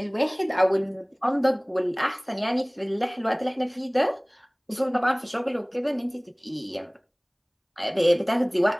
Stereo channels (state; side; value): identical; both; correlation 1.00